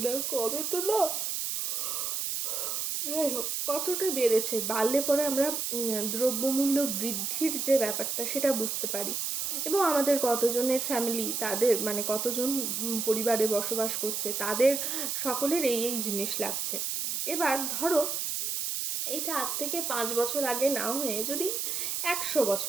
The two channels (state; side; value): noise; right; hiss, 1 dB below the sound